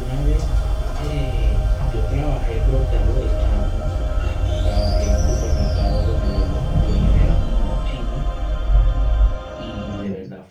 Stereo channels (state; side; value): identical; both; correlation 1.00